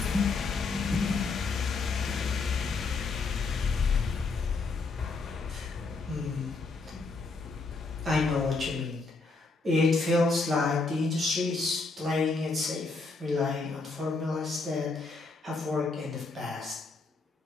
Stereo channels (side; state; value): right; quieter; 3.9 dB